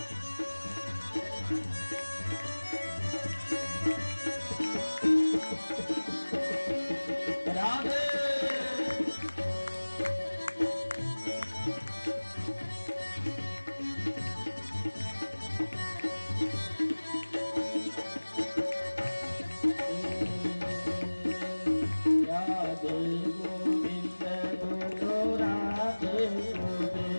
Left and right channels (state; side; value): inverted; both; correlation -1.00